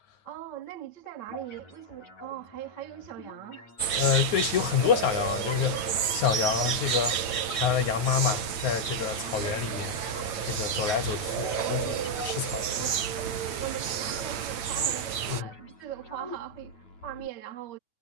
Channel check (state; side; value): late; right; 8.9 ms